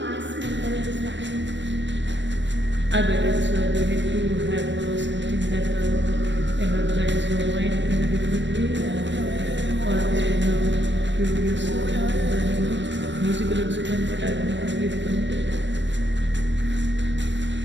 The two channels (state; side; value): late; left; 0.53 ms